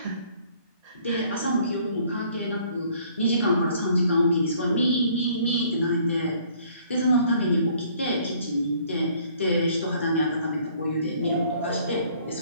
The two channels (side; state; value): both; inverted; correlation -0.59